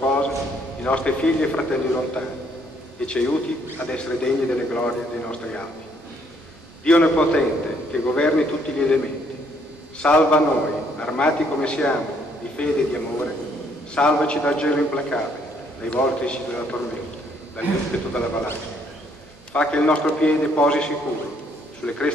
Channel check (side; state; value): both; normal; correlation 0.67